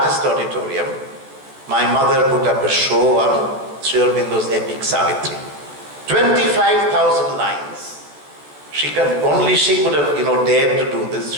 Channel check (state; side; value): late; left; 14 ms